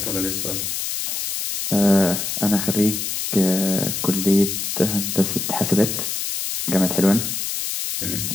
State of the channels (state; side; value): noise; left; hiss, 3 dB below the sound